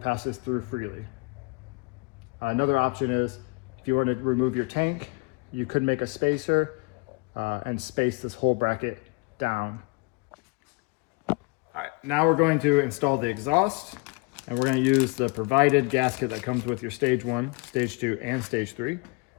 passes through freely. Another option is, if you want to remove your tank, you could make a spacer and space this whole bracket down. All right, now we're going to install the exhaust, and we're going to use the provided gasket that comes with your stage 1, stage 2, and stage 3.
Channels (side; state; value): right; quieter; 28.4 dB